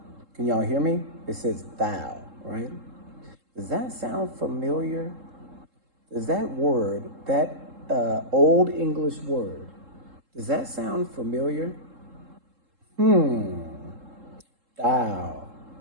Can y'all hear me? It says thou, right? Does that sound familiar? Does that word, that old English word, does that sound familiar? Thou,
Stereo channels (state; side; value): late; left; 3.7 ms